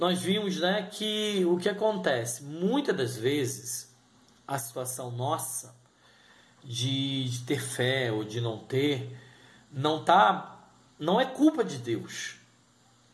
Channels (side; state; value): both; identical; correlation 1.00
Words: vimos, né, que o que acontece, muitas das vezes, a situação nossa de ter fé ou de não ter, não é culpa de Deus.